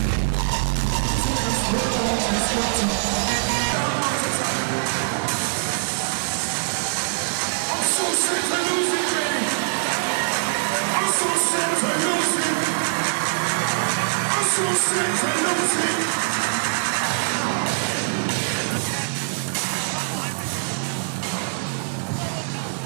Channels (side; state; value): left; silent; 63 dB below the other